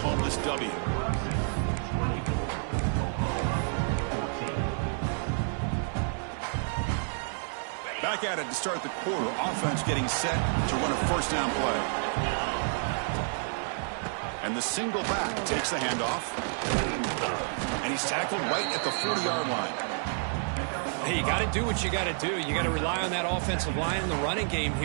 this W? Back at it to start the quarter. Offense getting set to run a 1st down play. And the single back takes the handoff. And he's tackled right at the 40-yard line. Hey, you got to do what you got to do. You got to rely on that offensive line in the running game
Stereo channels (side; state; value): left; silent; 58 dB below the other